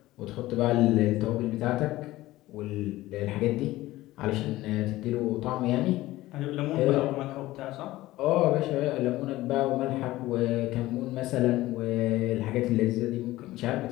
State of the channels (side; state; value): right; quieter; 17.1 dB